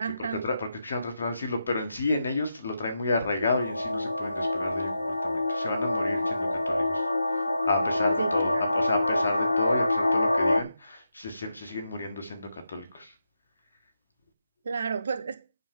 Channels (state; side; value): inverted; both; correlation -0.86